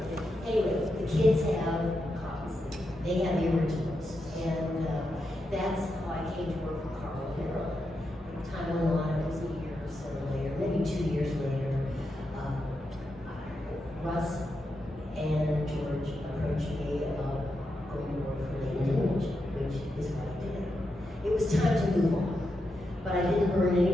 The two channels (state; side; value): normal; both; correlation 0.86